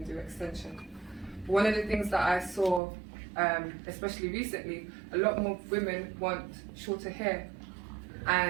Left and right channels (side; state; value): left; drops out; at 2.8 s